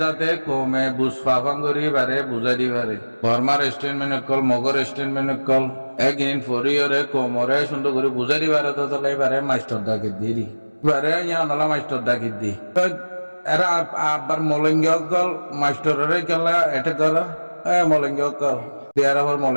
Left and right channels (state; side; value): inverted; both; correlation -1.00